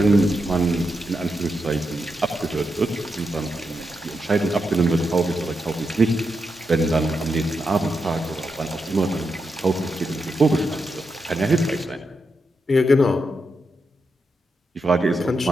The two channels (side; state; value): both; normal; correlation 0.85